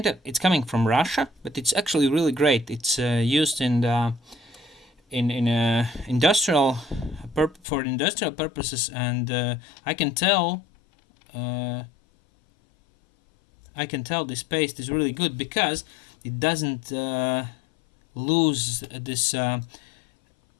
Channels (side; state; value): right; drops out; at 7.6 s